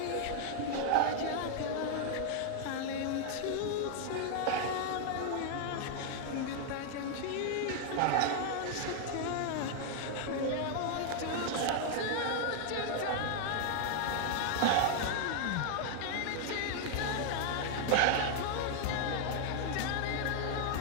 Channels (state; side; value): different; both; correlation 0.00